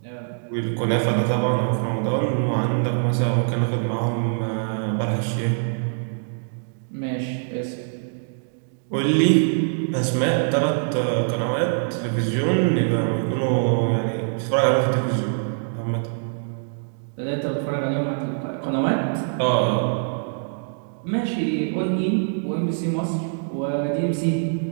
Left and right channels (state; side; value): silent; left; digital silence